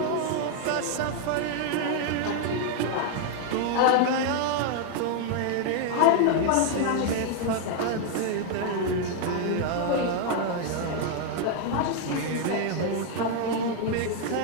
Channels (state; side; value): different; both; correlation 0.00